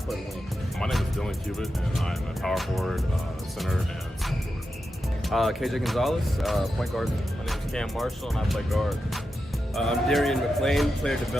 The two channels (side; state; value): both; normal; correlation 0.89